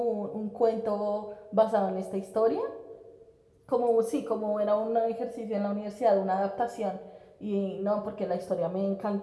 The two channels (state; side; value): identical; both; correlation 1.00